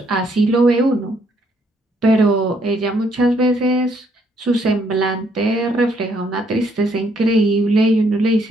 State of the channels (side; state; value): both; normal; correlation 0.70